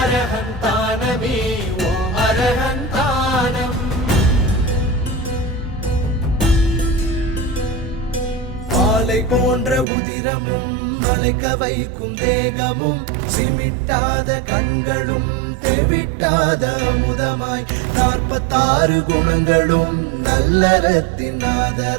ஓம் அரஹந்தானம் மாலை போன்ற உதிரமும் மலைக்க வைக்கும் தேகமும் சிமிட்டாத கண்களும் தெவிட்டாத அமுதமாய் 46 குணங்களும் நல்லறத்தின்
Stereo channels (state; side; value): drops out; left; at 9.9 s